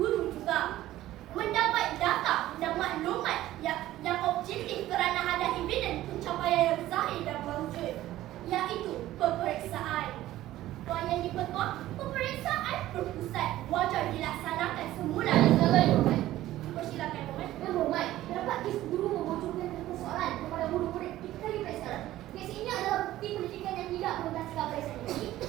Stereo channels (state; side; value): quieter; left; 14.8 dB